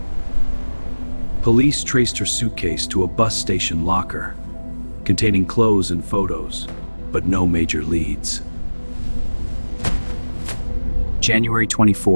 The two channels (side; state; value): both; inverted; correlation -1.00